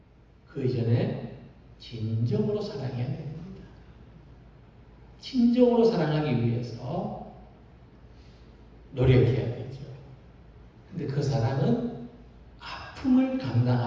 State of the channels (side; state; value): both; identical; correlation 1.00